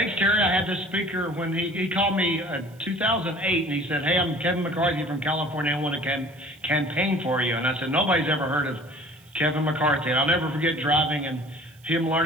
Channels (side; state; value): right; noise; hiss, 29 dB below the sound